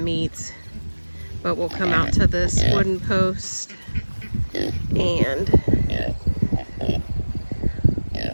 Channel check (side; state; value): both; inverted; correlation -1.00